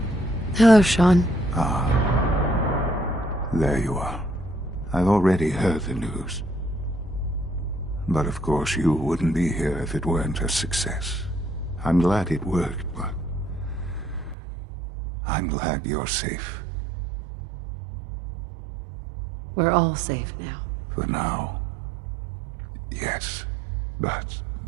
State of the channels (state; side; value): drops out; left; at 14.4 s